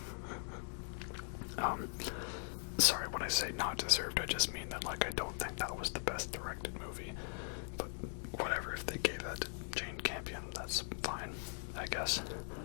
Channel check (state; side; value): silent; right; 51 dB below the other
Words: Sorry, when I say not deserved, I just mean that, like, I don't think that was the best directed movie. But whatever, if they gave that to Jane Campion, that's fine, I guess.